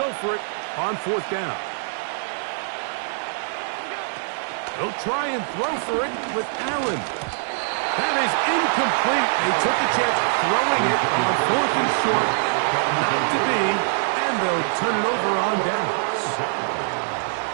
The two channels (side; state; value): left; silent; digital silence